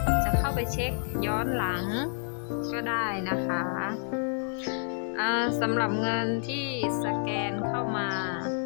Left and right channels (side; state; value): right; silent; 59 dB below the other